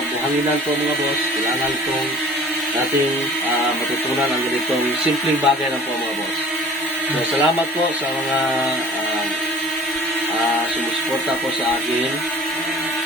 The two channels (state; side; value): normal; both; correlation 0.46